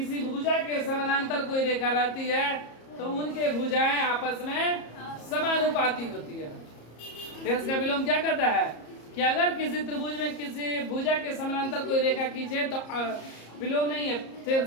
भुजा के समानांतर कोई रेखा रहती है तो उनके भुजाएं आपस में समानुपाती होती है। थेल्स का विलोम क्या कहता है कि अगर किसी त्रिभुज में किसी भुजा के समानांतर कोई रेखा खींचे तो विलोम नहीं है,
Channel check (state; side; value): late; right; 34 ms